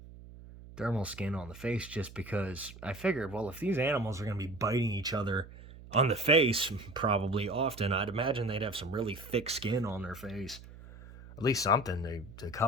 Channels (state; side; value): noise; right; hum, 17 dB below the sound